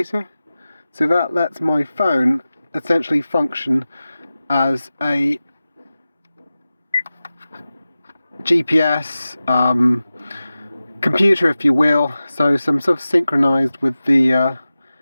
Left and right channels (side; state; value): both; inverted; correlation -0.95